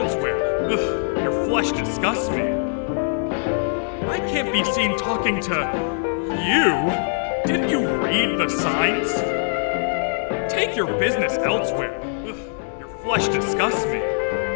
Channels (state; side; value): silent; right; digital silence